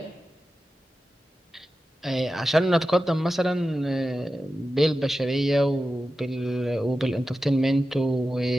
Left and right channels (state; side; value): normal; both; correlation 0.93